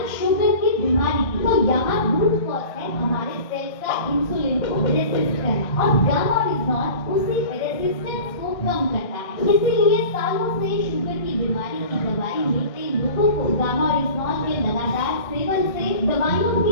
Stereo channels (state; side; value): late; right; 1.6 ms